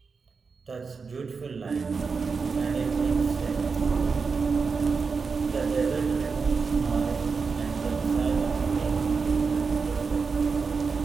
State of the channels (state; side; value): quieter; left; 5.0 dB